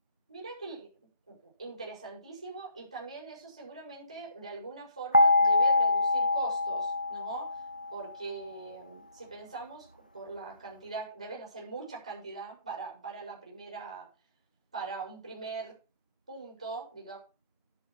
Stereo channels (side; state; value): both; inverted; correlation -0.68